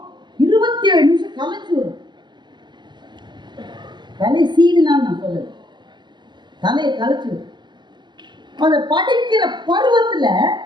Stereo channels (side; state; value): left; late; 0.22 ms